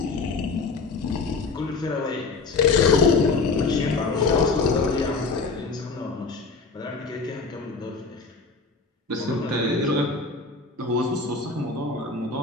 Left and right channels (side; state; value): right; quieter; 4.1 dB